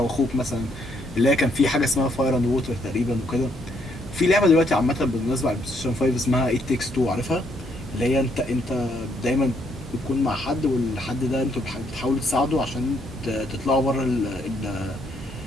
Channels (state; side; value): normal; both; correlation 0.72